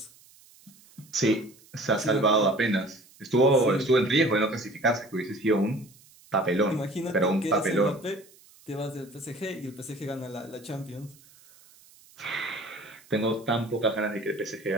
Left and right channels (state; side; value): noise; right; hiss, 26 dB below the sound